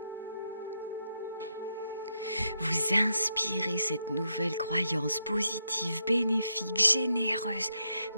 Vous inspirez cette nouvelle croyance positive, bénéfique, généreuse,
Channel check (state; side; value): inverted; both; correlation -0.82